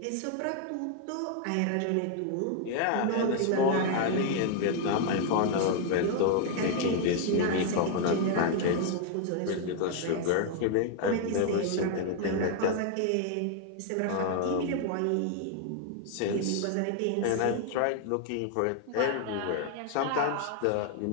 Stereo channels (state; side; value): different; both; correlation 0.00